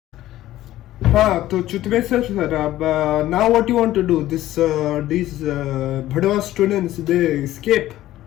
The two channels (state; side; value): quieter; right; 14.5 dB